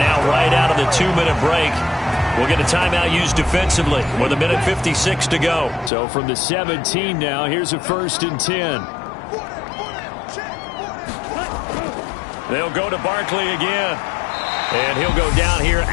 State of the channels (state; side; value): drops out; right; at 5.9 s